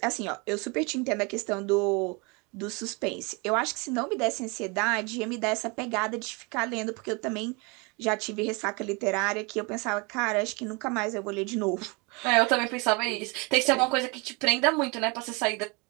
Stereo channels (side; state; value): left; quieter; 29.4 dB